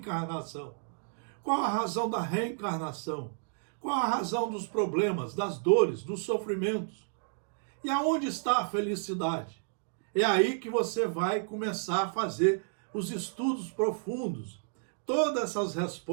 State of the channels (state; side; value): silent; left; digital silence